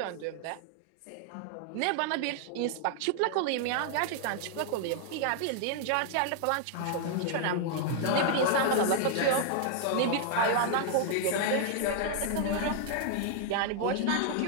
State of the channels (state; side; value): different; both; correlation 0.00